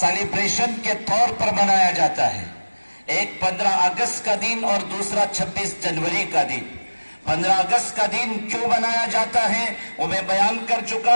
کے طور پر منایا جاتا ہے۔ ایک 15 اگست کا دن اور دوسرا 26 جنوری کا دن۔ 15 اگست کا دن کیوں منایا جاتا ہے وہ میں بیان کر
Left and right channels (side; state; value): both; inverted; correlation -1.00